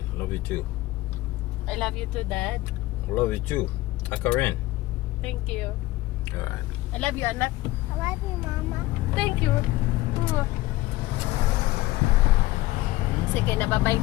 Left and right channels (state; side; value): quieter; right; 18.2 dB